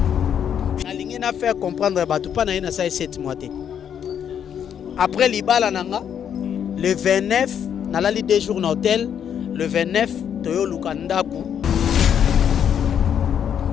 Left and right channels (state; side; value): quieter; right; 8.7 dB